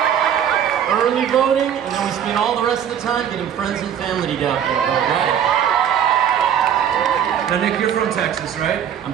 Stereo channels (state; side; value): quieter; left; 9.1 dB